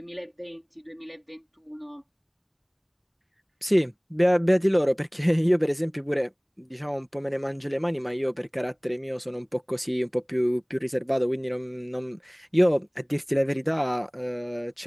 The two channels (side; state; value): both; identical; correlation 1.00